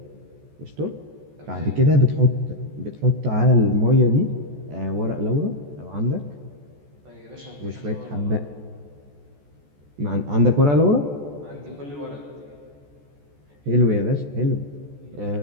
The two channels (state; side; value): late; left; 14 ms